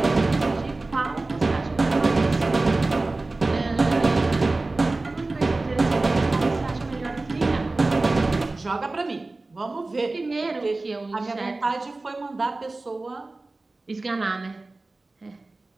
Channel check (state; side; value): quieter; left; 3.2 dB